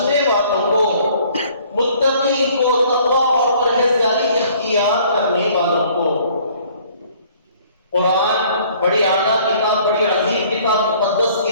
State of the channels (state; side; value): inverted; both; correlation -0.57